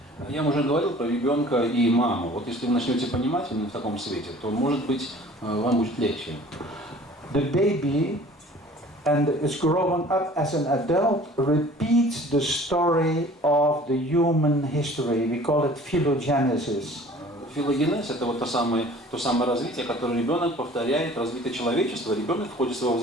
Я уже говорил про ребенка и маму. Вот если вы начнете понимать именно в таком свете, то, может быть, вам будет легче. The baby, and is growing up as an adult, repeats the story of the human history. We call it phylogenesis. Филогенез – это вот то самое развитие, которое ребенок повторяет, развитие человечества. Ребенок в ходе своего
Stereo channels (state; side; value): normal; both; correlation 0.48